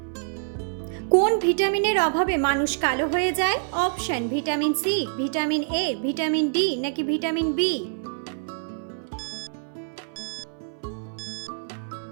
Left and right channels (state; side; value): silent; left; 59 dB below the other